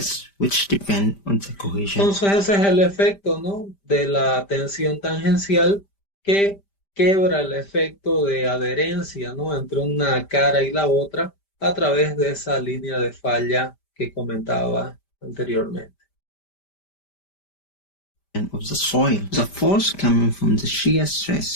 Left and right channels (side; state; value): right; late; 5.1 ms